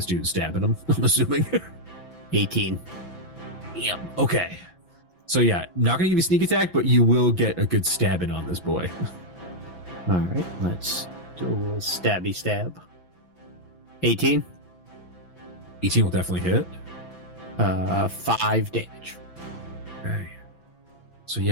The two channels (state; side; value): late; right; 6.0 ms